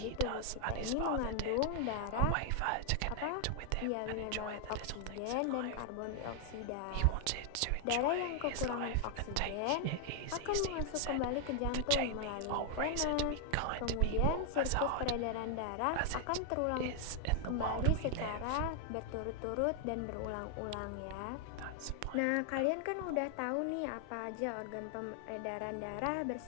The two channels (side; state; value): both; different; correlation 0.00